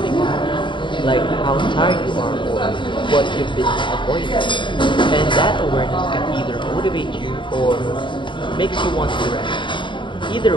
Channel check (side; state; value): right; late; 0.23 ms